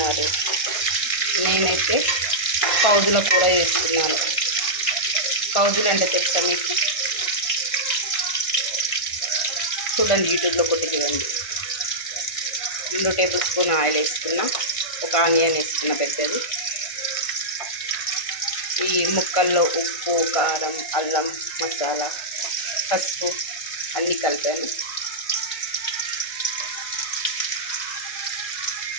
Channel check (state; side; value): late; right; 1.4 ms